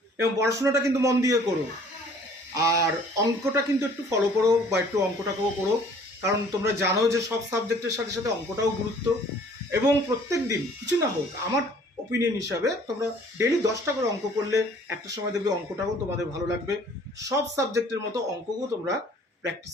এবং পড়াশোনাটা কিন্তু মন দিয়ে করো। আর অঙ্কটা কিন্তু একটু ফলো করো, বা একটু অঙ্কটাকেও করো, কারণ তোমরা জানো যে সব সাবজেক্টের সাথে সাথে অঙ্কটাও গুরুত্ব। এবং প্রত্যেক দিন কিছু না হোক, আমার ওপিনিয়ন হিসাবে তোমরা ডেলি 10টা করে অঙ্ক করলে একটা সময় দেখবে অঙ্কটাও তোমাদের ভালো লাগবে। সব সাবজেক্টের মতো অঙ্ককেও তোমরা প্র্যাকটিস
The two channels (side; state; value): both; normal; correlation 0.54